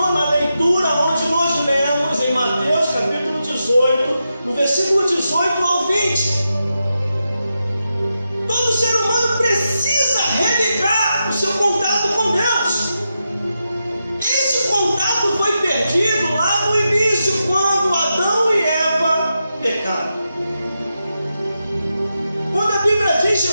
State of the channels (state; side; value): inverted; both; correlation -0.87